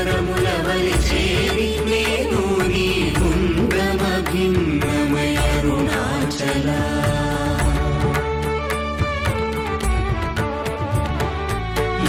వలి చేరి నేను నీ గుండ్రమ భిన్నమయ అరుణాచల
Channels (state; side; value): identical; both; correlation 1.00